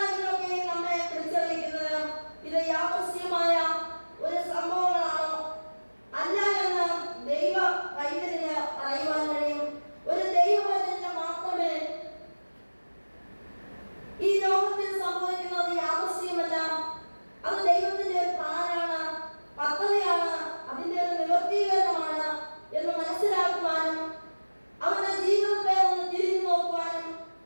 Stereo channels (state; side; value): inverted; both; correlation -1.00